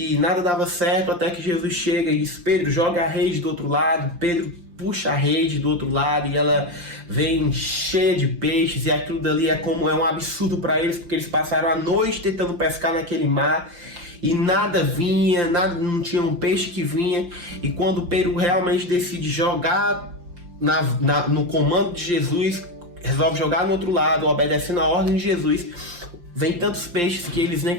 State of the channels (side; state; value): left; late; 5.7 ms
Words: nada dava certo até que Jesus chega e diz: Pedro, joga a rede do outro lado. Pedro puxa a rede do outro lado e ela vem cheia de peixes, e aquilo dali é um absurdo para eles, porque eles passaram a noite tentando pescar naquele mar e nada vinha, não tinha um peixe que vinha. E quando Pedro realmente decide jogar no comando de Jesus, resolve jogar no outro lado, obedecendo a ordem de Jesus, vem tantos peixes que eles nem